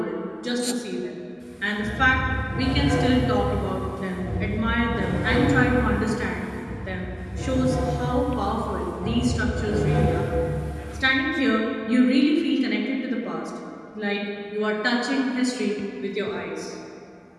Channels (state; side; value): identical; both; correlation 1.00